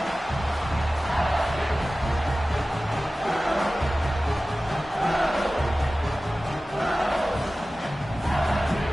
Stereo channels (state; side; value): normal; both; correlation 0.96